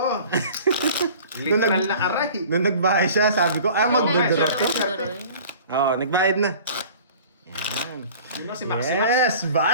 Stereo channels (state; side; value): inverted; both; correlation -0.45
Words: Literal na aray. Nung nagbahay siya, sabi ko, magdodoro to. Magdodoro. Oo, nagbayad na. Yan. Yun lang si Maximus. Yes,